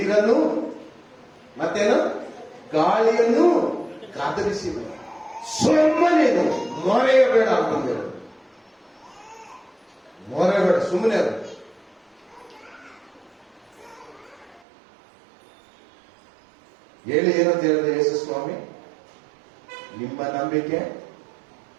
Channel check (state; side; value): drops out; left; at 14.6 s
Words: ಮತ್ತೇನು? ಗಾಳಿಯನ್ನು ಗದರಿಸಿದ. ಸುಮ್ಮನೇನು ಮೊರೆಯಬೇಡ ಅಂತಂದ. ಮೊರೆಬೇಡ, ಸುಮ್ಮನೆ ಅದು. ಹೇಳಿ ಏನಂತ ಹೇಳಿದೆ ಯೇಸು ಸ್ವಾಮಿ? ನಿಮ್ಮ ನಂಬಿಕೆ